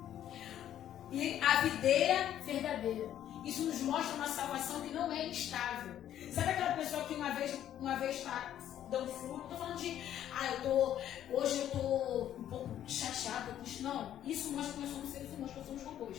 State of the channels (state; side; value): quieter; right; 11.1 dB